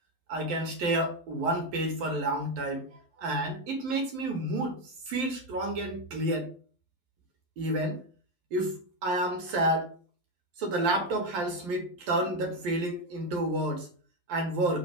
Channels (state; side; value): late; left; 12 ms